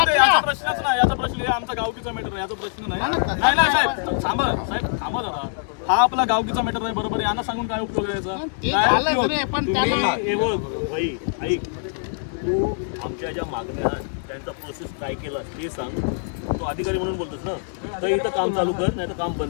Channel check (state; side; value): silent; right; digital silence